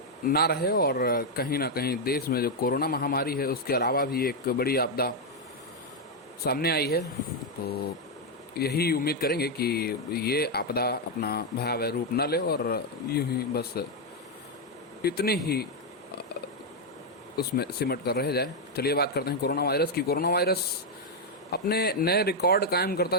ना रहे, और कहीं ना कहीं देश में जो कोरोना महामारी है उसके अलावा भी एक बड़ी आपदा सामने आई है। तो यही उम्मीद करेंगे कि ये आपदा अपना भयावह रूप न ले और यूं ही बस इतनी ही उसमें सिमट कर रह जाए। चलिए बात करते हैं कोरोना वायरस की। कोरोना वायरस अपने नए रिकॉर्ड कायम करता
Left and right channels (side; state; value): both; normal; correlation 0.00